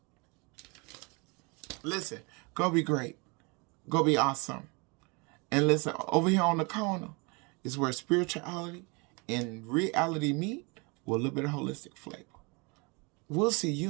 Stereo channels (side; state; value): left; quieter; 29.8 dB